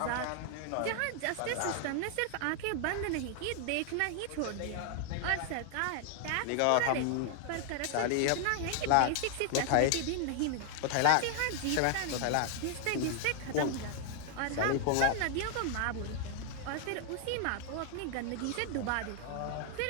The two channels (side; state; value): both; different; correlation 0.00